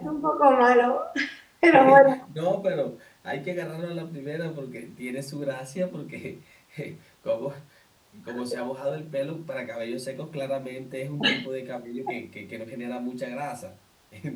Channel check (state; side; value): identical; both; correlation 1.00